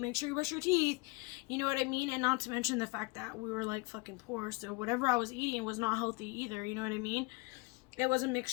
sure you brush your teeth. You know what I mean? And not to mention the fact that we were, like, fucking poor. So whatever I was eating was not healthy either. You know what I mean? It was a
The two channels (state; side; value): quieter; right; 27.0 dB